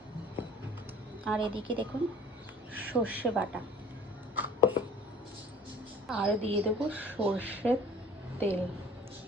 আর এদিকে দেখুন সর্ষে বাটা, আর দিয়ে দেবো সর্ষের তেল।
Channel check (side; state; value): both; normal; correlation 0.49